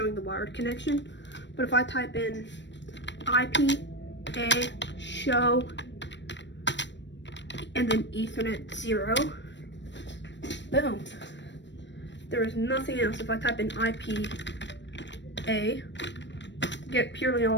the wired connection. But if I type in IP, show, and then Ethernet 0, boom. There is nothing else. If I type in IP, get purely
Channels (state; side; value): late; right; 0.53 ms